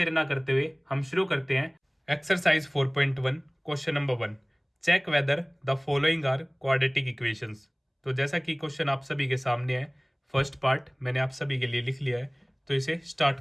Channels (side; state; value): both; identical; correlation 1.00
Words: ना करते हुए हम शुरू करते हैं। Exercise 4.1 question number 1, check whether the following are quadratic equations. तो जैसा कि क्वेश्चन आप सभी के सामने है, फर्स्ट पार्ट मैंने आप सभी के लिए लिख लिया है, तो इसे स्टार्ट